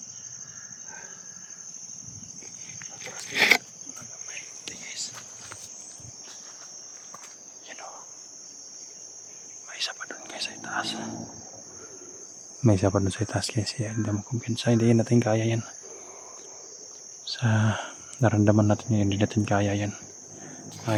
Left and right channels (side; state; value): both; identical; correlation 1.00